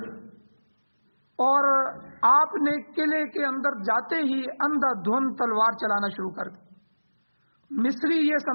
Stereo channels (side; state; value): both; inverted; correlation -1.00